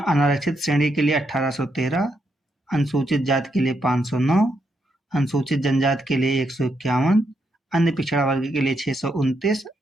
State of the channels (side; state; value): both; normal; correlation 0.79